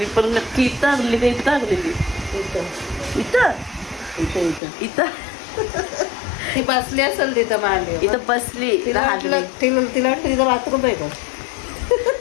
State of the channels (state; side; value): drops out; right; at 4.6 s